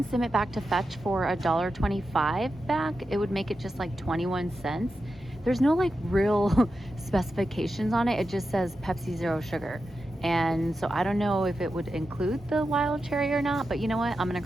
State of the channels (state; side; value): normal; both; correlation 0.90